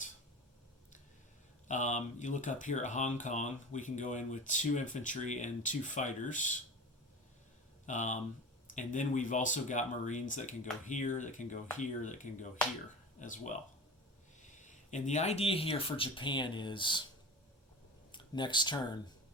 You look up here at Hong Kong, we can go in with 2 infantry and 2 fighters. And then we've also got Marines that can go here, that can go here, that can go here as well. And the idea here for Japan is next turn,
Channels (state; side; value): normal; both; correlation 0.33